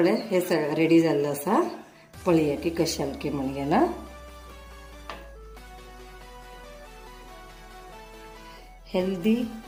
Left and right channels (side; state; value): both; identical; correlation 1.00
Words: हे रेडी जाल्लें आसा. पळया की कशें जालें की म्हणून ना. हेल्दी